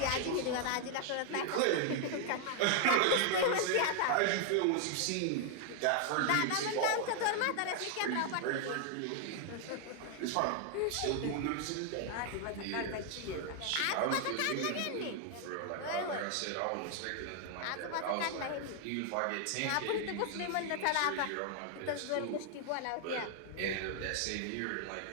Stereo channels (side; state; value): both; different; correlation 0.00